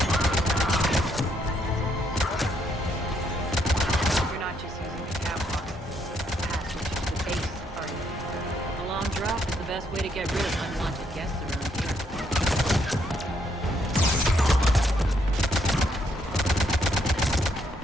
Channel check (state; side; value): normal; both; correlation 0.73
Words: You're not just using the catwalk passage to the base, are you? A long drop is the best way to get rid of unwanted guests around here.